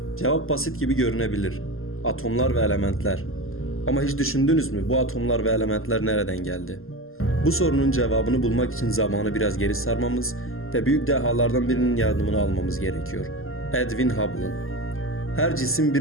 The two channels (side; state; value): right; late; 0.61 ms